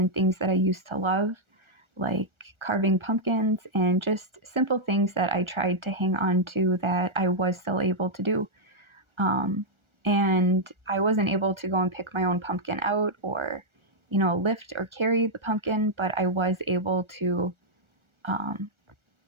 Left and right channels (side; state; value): left; late; 1.4 ms